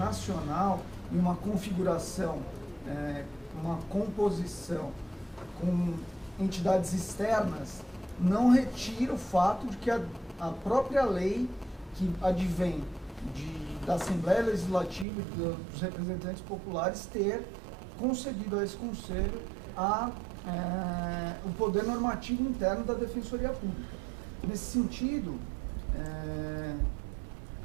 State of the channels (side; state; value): left; drops out; at 15.1 s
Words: e uma configuração, uma composição com entidades externas, não retira o fato de que a própria lei que advém da Assembleia Legislativa e dos representantes populares ter concedido a esse Conselho o poder normativo interno da Defensoria Pública. Nesse sentido,